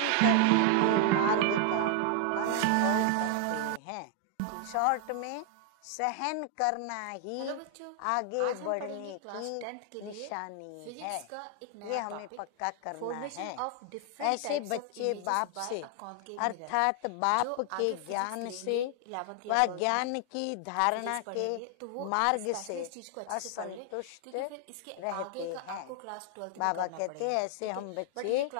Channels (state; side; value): different; both; correlation 0.00